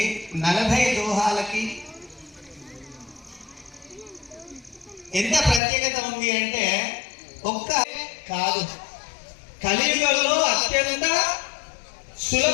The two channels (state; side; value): drops out; right; at 5.6 s